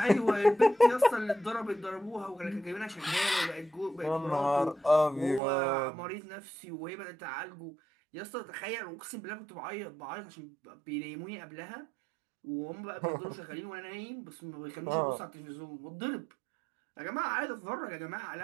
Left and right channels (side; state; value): left; drops out; at 5.4 s